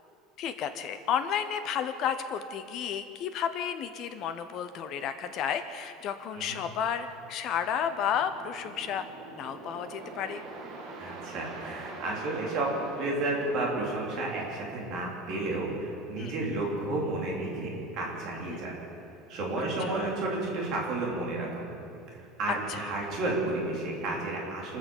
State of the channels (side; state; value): both; normal; correlation 0.33